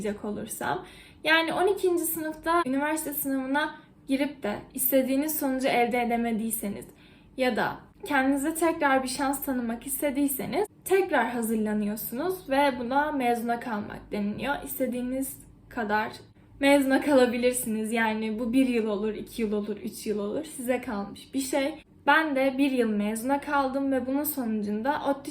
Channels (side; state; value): both; identical; correlation 1.00